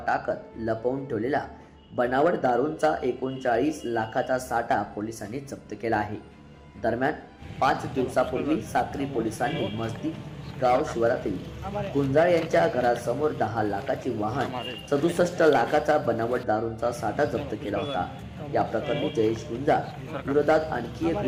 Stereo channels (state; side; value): identical; both; correlation 1.00